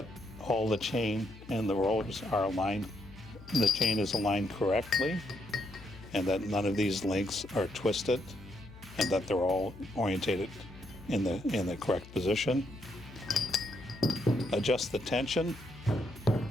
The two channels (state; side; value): noise; left; hum, 18 dB below the sound